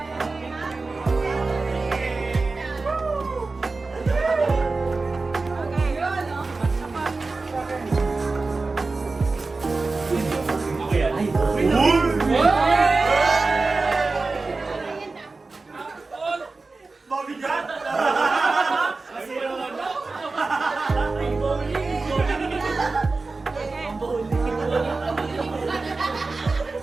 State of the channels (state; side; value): quieter; left; 3.7 dB